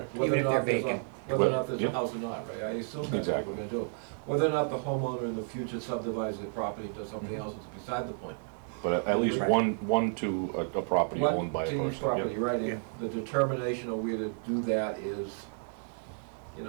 Whether or Even if not they're there's a, vacant. whether or not there's a Yeah. house or not, right? I assume that's what Exactly. we're gonna do. Whether or not the homeowner in the future subdivides the property to something else is beside the point. But at least Right. one to a property One owned by a to each person. property, Yep. right, and the determination of where to do that is, you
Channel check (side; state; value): left; silent; 57 dB below the other